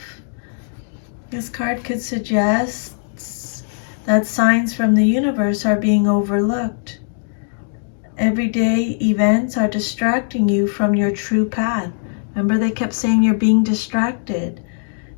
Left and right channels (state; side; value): silent; right; digital silence